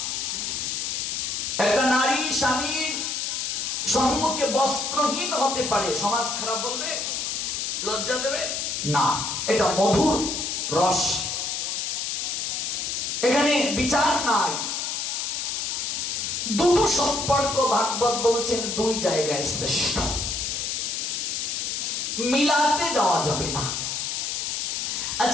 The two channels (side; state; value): left; noise; hiss, 2 dB below the sound